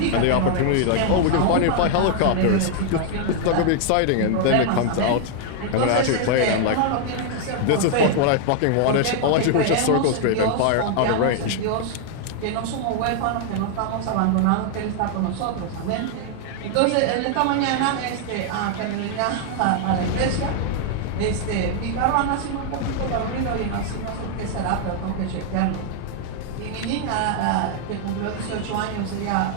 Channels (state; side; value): different; both; correlation 0.00